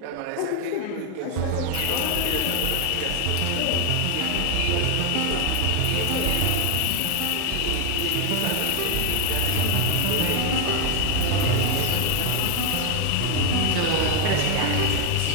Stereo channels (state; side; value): different; both; correlation 0.01